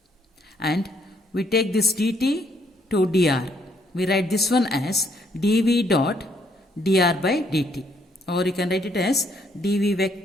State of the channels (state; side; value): normal; both; correlation 0.70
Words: and we take this dt to dr. We write this one as dv dot dr by dt, or you can write it as dv